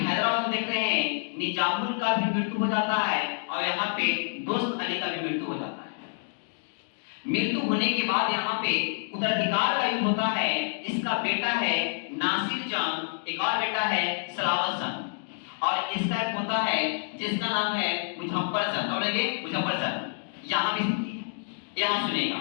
में देख रहे हैं निजामुल का भी मृत्यु हो जाता है और यहाँ पे दोस्त अली का भी मृत्यु हो जाता है। मृत्यु होने के बाद यहाँ पे उत्तराधिकार का युद्ध होता है। इसका बेटा है नासिर जंग, एक और बेटा है सलावत जंग, और इसका एक होता है जिसका नाम है मुजफ्फर जंग। बोलेंगे मुजफ्फर जंग। यहाँ भी स्थिति है, यहाँ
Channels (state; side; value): silent; right; digital silence